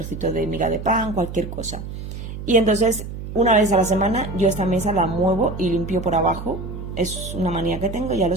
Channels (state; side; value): noise; right; hum, 9 dB below the sound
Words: de miga de pan, cualquier cosa. Y entonces una vez a la semana yo esta mesa la muevo y limpio por abajo. Es una manía que tengo, ya lo